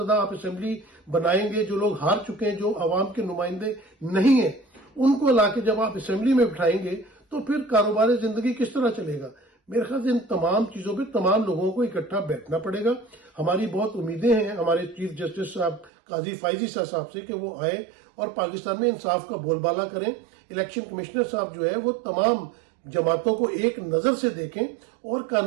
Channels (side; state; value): left; drops out; at 15.9 s